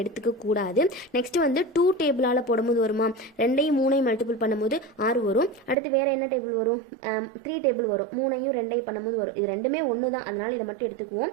எடுத்துக்க கூடாது. நெக்ஸ்ட் 2 டேபிளால் போடும்போது வருமா, 2ஐயும் 3ஐயும் மல்டிபிள் பண்ணும்போது 6 வரும். அடுத்து வேற என்ன டேபிள் வரும், 3 டேபிள் வரும். 3ஐயும் 2ஐயும் பண்ணும்போது வரும். இது ரெண்டுமே ஒன்று தான், அதனால இதை மட்டும்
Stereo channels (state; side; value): drops out; left; at 5.8 s